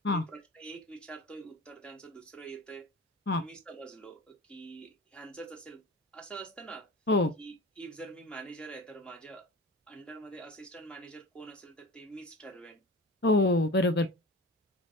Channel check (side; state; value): both; normal; correlation 0.35